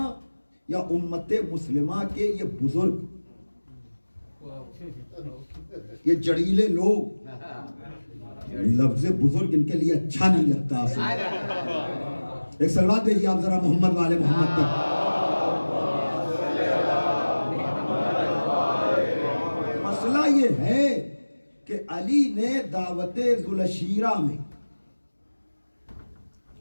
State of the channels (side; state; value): both; inverted; correlation -1.00